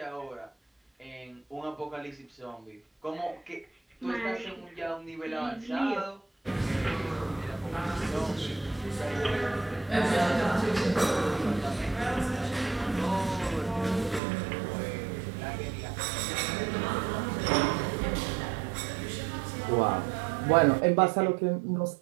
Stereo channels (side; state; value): left; drops out; at 14.2 s